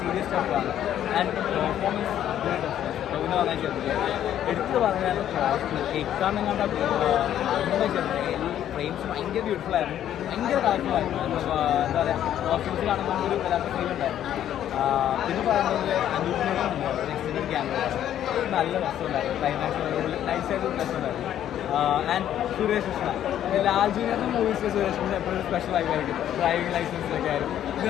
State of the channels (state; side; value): quieter; right; 11.0 dB